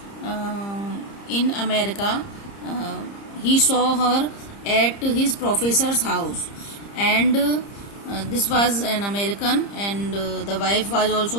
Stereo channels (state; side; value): late; right; 30 ms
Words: in America, he saw her at his professor's house, and this was an American, and the wife was